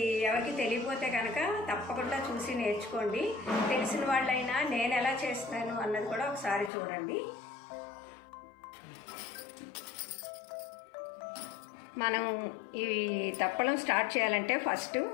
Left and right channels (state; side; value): drops out; right; at 6.7 s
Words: ఎవరికి తెలియకపోతే కనుక తప్పకుండా చూసి నేర్చుకోండి. తెలిసిన వాళ్ళైనా నేను ఎలా చేస్తాను అన్నది కూడా ఒకసారి చూడండి. మనం ఈ దప్పలం స్టార్ట్ చేయాలంటే ఫస్ట్